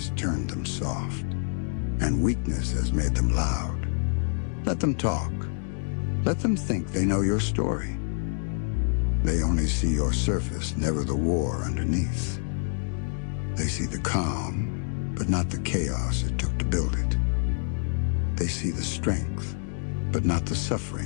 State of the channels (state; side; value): silent; right; digital silence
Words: turned them soft, and weakness has made them loud. Let them talk. Let them think they know your story. They only see your surface, never the war underneath. They see the calm, but not the chaos it took to build it. They see the strength, but not the